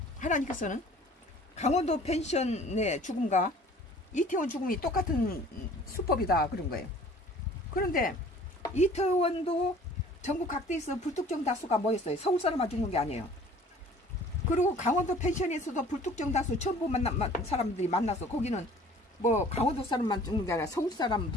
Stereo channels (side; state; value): both; normal; correlation 0.50